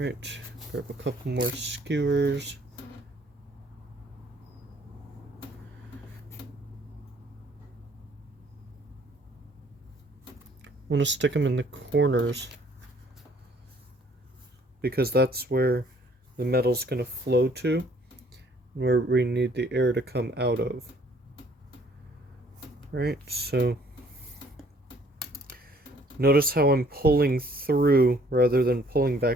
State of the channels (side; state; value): both; normal; correlation 0.60